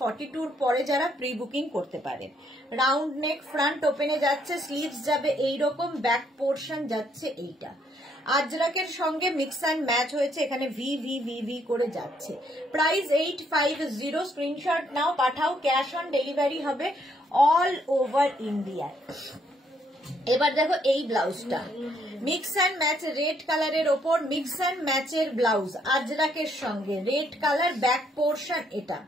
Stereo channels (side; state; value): both; normal; correlation 0.70